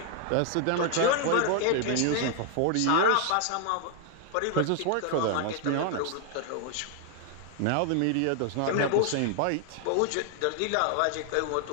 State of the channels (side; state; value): both; different; correlation 0.00